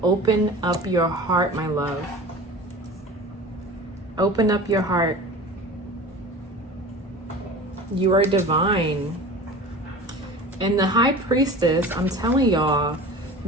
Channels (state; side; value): normal; both; correlation 0.37